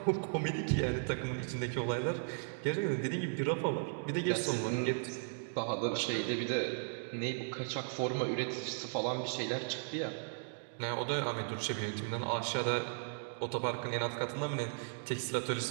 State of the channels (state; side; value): silent; left; digital silence